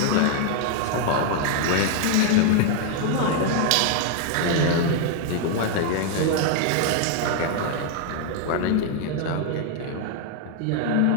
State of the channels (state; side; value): different; both; correlation 0.00